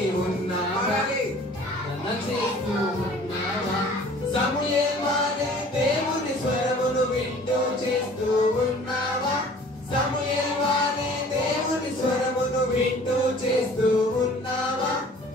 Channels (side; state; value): both; normal; correlation 0.49